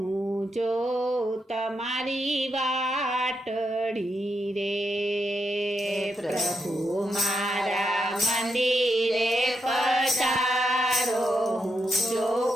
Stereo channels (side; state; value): both; normal; correlation 0.82